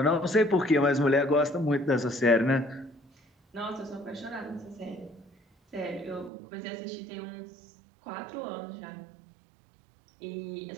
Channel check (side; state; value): left; drops out; at 6.3 s